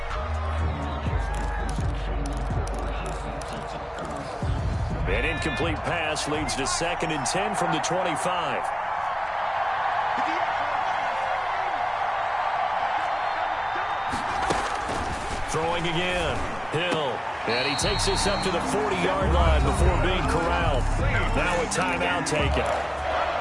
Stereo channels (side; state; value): both; identical; correlation 1.00